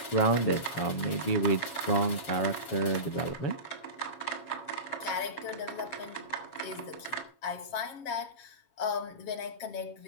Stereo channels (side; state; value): right; late; 7.3 ms